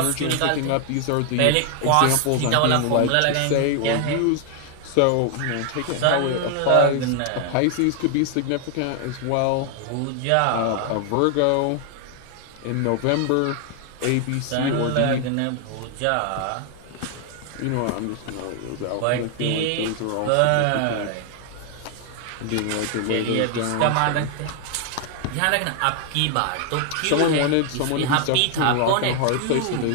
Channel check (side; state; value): both; different; correlation 0.00